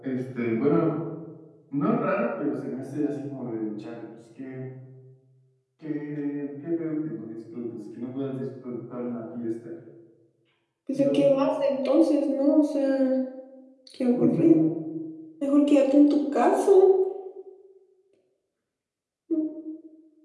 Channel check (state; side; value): identical; both; correlation 1.00